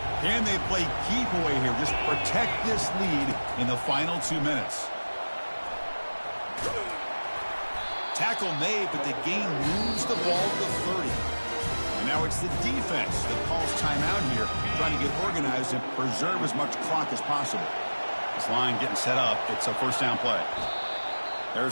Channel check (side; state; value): both; inverted; correlation -1.00